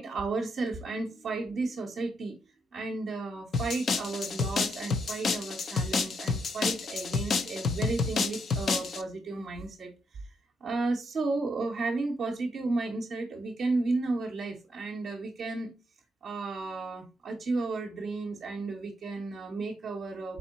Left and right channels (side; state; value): both; normal; correlation 0.78